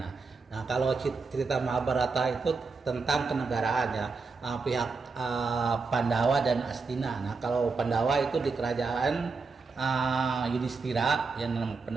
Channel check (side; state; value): left; quieter; 4.4 dB